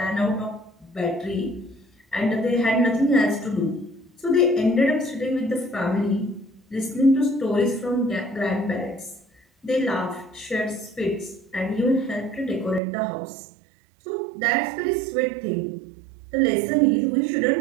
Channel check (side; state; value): left; drops out; at 12.8 s